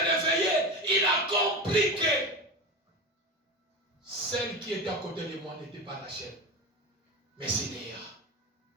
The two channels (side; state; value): both; normal; correlation 0.25